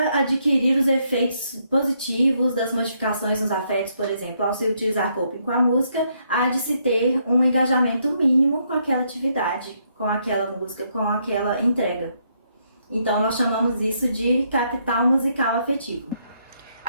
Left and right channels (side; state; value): both; inverted; correlation -0.74